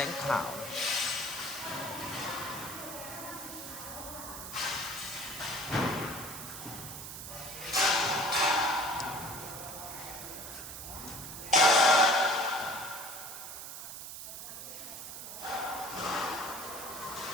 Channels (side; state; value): right; noise; hiss, 9 dB below the sound